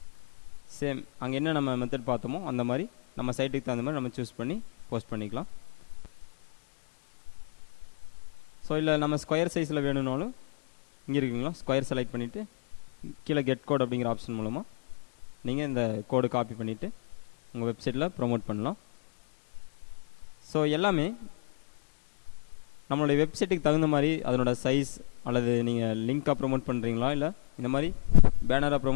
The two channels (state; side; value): silent; right; 58 dB below the other